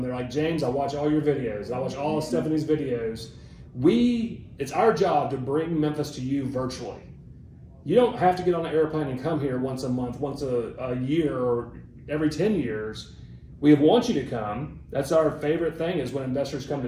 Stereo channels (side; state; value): both; identical; correlation 1.00